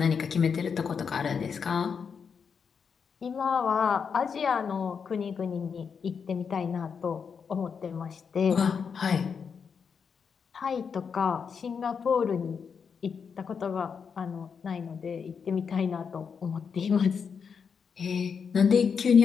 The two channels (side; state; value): right; quieter; 6.3 dB